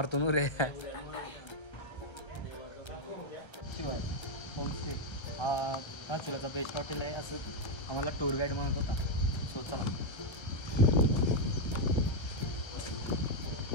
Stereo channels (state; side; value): late; right; 1.3 ms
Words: नु रे. होमस्टे हा धारचुलाचा बेस्ट हॉटेल आहे असं आम्हाला टूर गाईड म्हणत होता. सो चला.